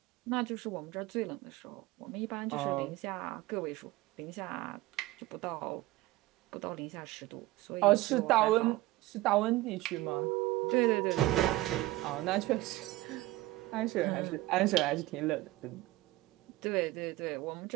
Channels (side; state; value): left; quieter; 18.5 dB